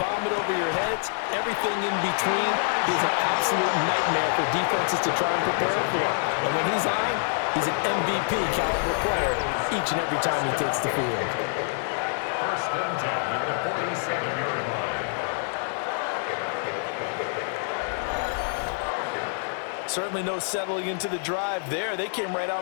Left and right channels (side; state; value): right; silent; digital silence